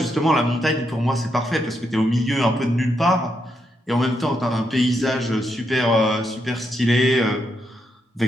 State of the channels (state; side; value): normal; both; correlation 0.81